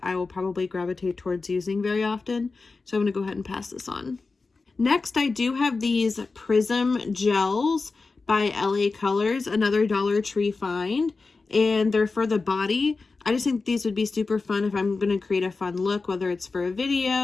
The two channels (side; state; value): right; quieter; 4.0 dB